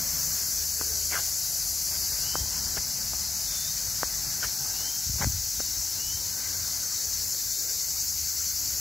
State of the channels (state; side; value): quieter; right; 3.4 dB